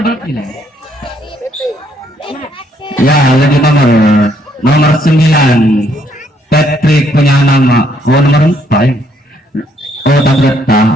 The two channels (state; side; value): normal; both; correlation 0.69